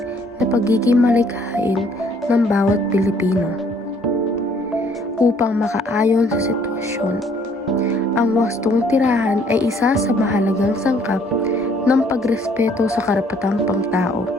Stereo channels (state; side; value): normal; both; correlation 0.62